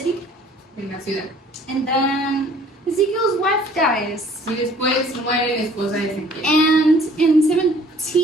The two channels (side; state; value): both; normal; correlation 0.55